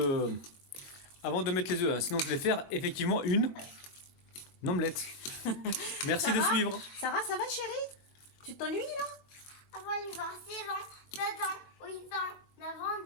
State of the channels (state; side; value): late; right; 22 ms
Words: mettre les œufs. Hein. Sinon je vais faire effectivement une omelette. Merci de suivre. Sarah, ça va chérie? Tu t'ennuies là? Avant, il va 6 ans, 7 ans, 8 ans, 9 ans,